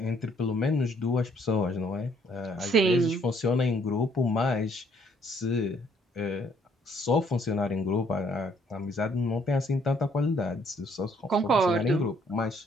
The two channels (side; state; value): both; normal; correlation 0.65